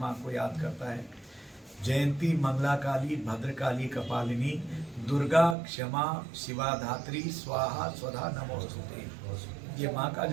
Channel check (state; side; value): drops out; left; at 5.6 s